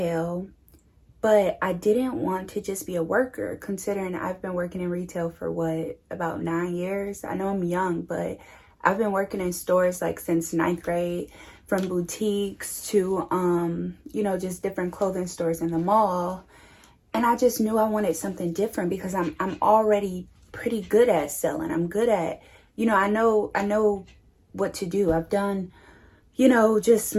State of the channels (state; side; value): identical; both; correlation 1.00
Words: but I didn't want to just be a worker, considering I've been working in retail for about 9 years. I know I'm young, but I've been working in stores like since 9th grade, from boutiques to, you know, just different clothing stores in the mall. And I just knew I wanted something different because I'm already pretty good at selling. I'm good at, you know, I know what to do. I've done, you know, just